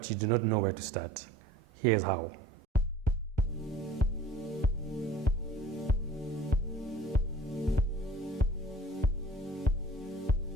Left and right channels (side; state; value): both; normal; correlation 0.48